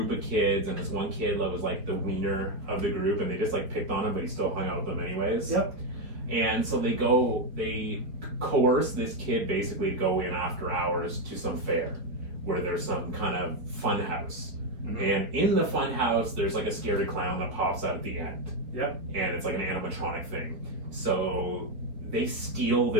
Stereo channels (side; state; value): left; late; 4.2 ms